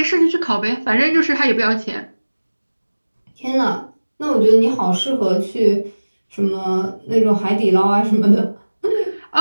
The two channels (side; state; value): both; inverted; correlation -1.00